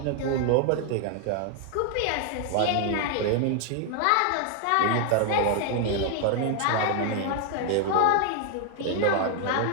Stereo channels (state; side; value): different; both; correlation 0.00